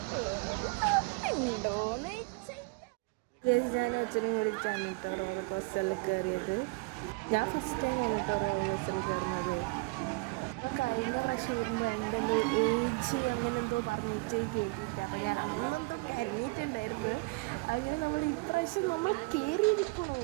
ഗൈസ് ഞാനും അച്ഛനും കൂടിയിട്ടാണ് കേട്ടോ റോളർ കോസ്റ്ററിൽ കയറിയത്. ഞാൻ ഫസ്റ്റ് ടൈം ആണ് കേട്ടോ റോളർ കോസ്റ്ററിൽ കയറുന്നത്. അപ്പോൾ കഴിഞ്ഞ പ്രാവശ്യം വരുമ്പോൾ എൻ്റെ എന്തോ ഏജ് അങ്ങനെ എന്തോ പറഞ്ഞിട്ട് കയറ്റിയിട്ട് അപ്പോൾ ഞാൻ അന്നെന്തോ കരഞ്ഞിട്ടുണ്ടായിരുന്നു. അങ്ങനെ നമ്മൾ ഇപ്രാവശ്യം നമ്മൾ കയറിയിരിക്കണോ.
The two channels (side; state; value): left; quieter; 28.0 dB